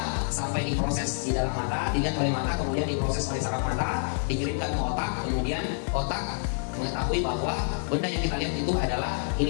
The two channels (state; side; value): silent; right; digital silence